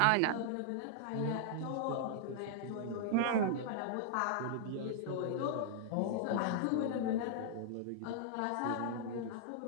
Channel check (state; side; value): different; both; correlation -0.01